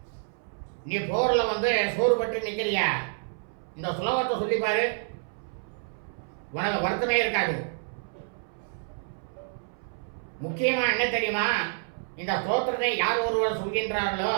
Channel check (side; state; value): left; silent; 59 dB below the other